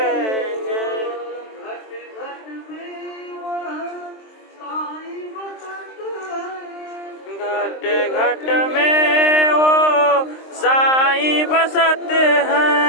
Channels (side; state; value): right; late; 23 ms